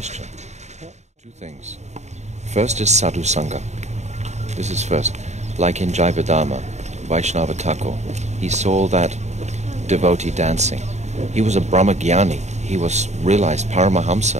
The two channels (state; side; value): late; left; 0.33 ms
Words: Two things. First is sadhu sangha. This is first. Like in Jayavadama, Vaishnava Thakur, he saw that devotee dancing. He was a Brahmagyani. He was realized